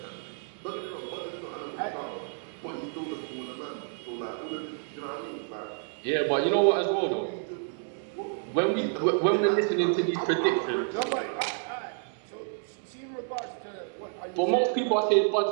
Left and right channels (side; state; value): left; silent; 58 dB below the other